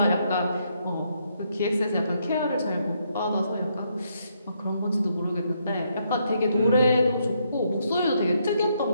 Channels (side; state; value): both; inverted; correlation -0.75